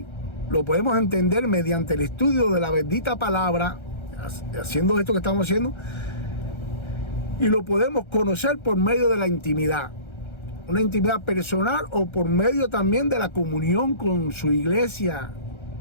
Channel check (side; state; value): right; late; 1.3 ms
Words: Lo podemos entender mediante el estudio de la bendita palabra, haciendo esto que estamos haciendo, y lo podemos conocer por medio de la intimidad, una intimidad personal, o por medio también de la comunión con su iglesia.